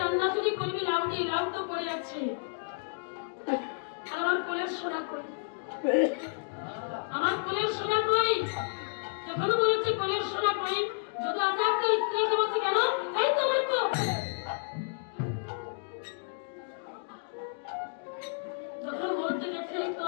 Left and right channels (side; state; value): right; silent; digital silence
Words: রান্না যদি করবি লাউ দিয়ে, লাউ তো পড়ে আছে। আর আমার কোলের সোনা কই? আমার কোলের সোনা কই? যখন বলেছে কোলের সোনা কই, যদি আচার্য স্ত্রীকে বলছে, কেন? এই তোমার কোল। যখন বলতে গেছে এই তো